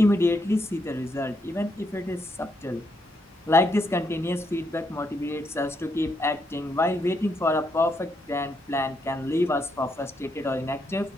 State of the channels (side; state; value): both; normal; correlation 0.78